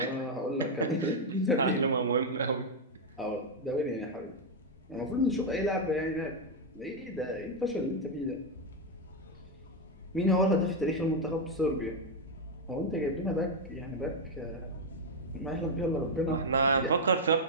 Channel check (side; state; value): both; normal; correlation 0.02